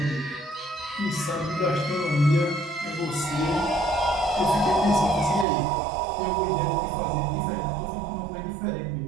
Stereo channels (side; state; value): left; drops out; at 5.5 s